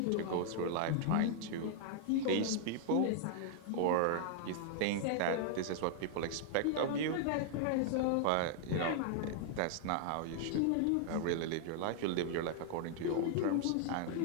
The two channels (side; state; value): both; different; correlation -0.01